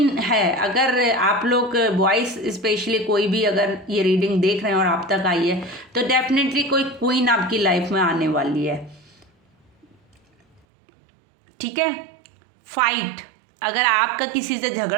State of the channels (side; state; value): left; drops out; at 10.6 s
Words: है, अगर आप लोग बॉयज़ स्पेशली कोई भी अगर ये रीडिंग देख रहे हैं और आप तक आई है, तो डेफिनेटली कोई क्वीन आपकी लाइफ में आने वाली है, ठीक है। फाइट, अगर आपका किसी से